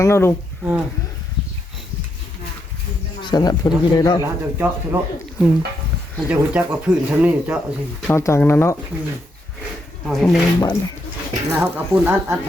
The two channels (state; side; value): normal; both; correlation 0.79